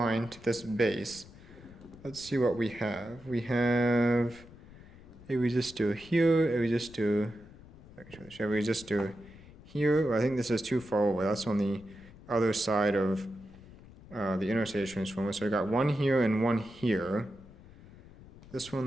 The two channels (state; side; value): noise; left; rumble, 20 dB below the sound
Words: to this base, let's see what we have. We have a resistor here, a resistor here. I think this is too far away. That's on the other side of the interstate transformer. So I got one here and one here. This one